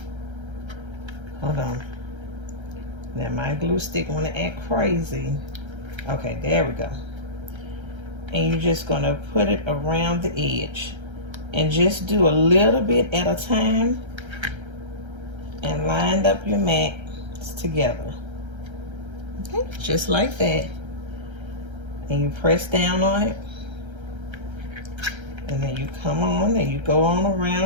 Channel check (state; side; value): late; left; 1.3 ms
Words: Hold on. Now my glue stick want to act crazy. Okay, there we go. And you're just going to put it around the edge and just do a little bit at a time and line up your mats together. Okay, just like that. And you press down on it, and then you come on and you go on